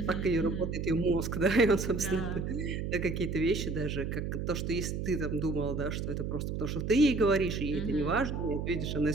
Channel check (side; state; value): right; noise; hum, 3 dB below the sound